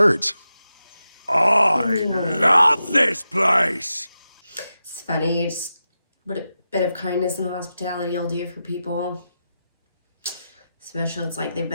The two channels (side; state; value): both; inverted; correlation -0.90